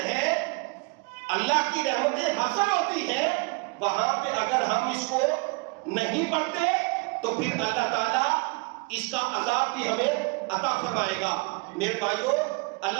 ہیں، اللہ کی رحمتیں حاصل ہوتی ہیں، وہاں پہ اگر ہم اس کو نہیں پڑھتے تو پھر اللہ تعالیٰ اس کا عذاب بھی ہمیں عطا فرمائے گا۔ میرے بھائیوں،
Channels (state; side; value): quieter; left; 30.3 dB